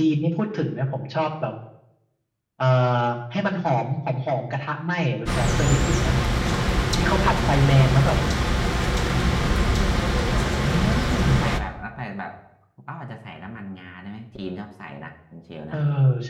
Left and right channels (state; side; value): identical; both; correlation 1.00